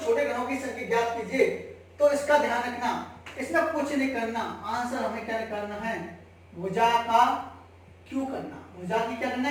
छोटे घनों की संख्या ज्ञात कीजिए, तो इसका ध्यान रखना, इसमें कुछ नहीं करना, आंसर हमें क्या करना है? भुजा का क्यों करना, भुजा की क्या करना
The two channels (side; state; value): both; identical; correlation 1.00